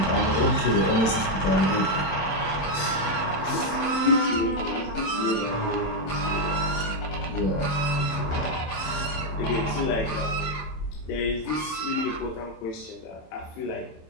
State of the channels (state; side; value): late; right; 26 ms